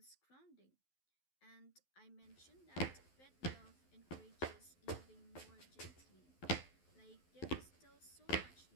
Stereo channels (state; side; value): late; right; 12 ms